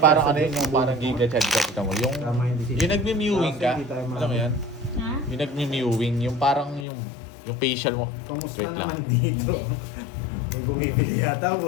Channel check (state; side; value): drops out; right; at 6.9 s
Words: parang chance ano yun, sa yung buong parang ko. giga-chat ka mo. Tama yung decision. Yung nagme-mewing ka, Hindi tayo alam mo yan? Ha? Yung nagme-mewing, yung parang yung facial mo. Kamusta Wait lang. naman dito? May bumibili yata,